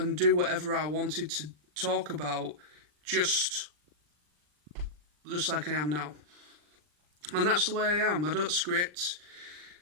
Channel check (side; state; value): left; late; 40 ms